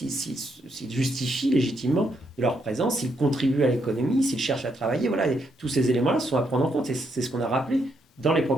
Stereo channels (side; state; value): both; normal; correlation 0.77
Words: justifient légitimement de leur présence, s'ils contribuent à l'économie, s'ils cherchent à travailler. Voilà, et tous ces éléments-là sont à prendre en compte. C'est ce qu'on a rappelé dans les